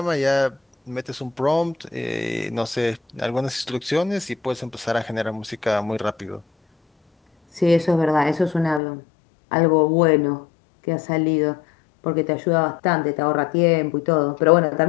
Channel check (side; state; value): right; drops out; at 8.8 s